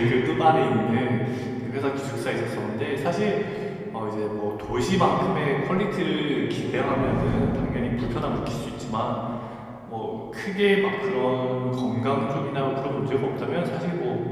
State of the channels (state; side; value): identical; both; correlation 1.00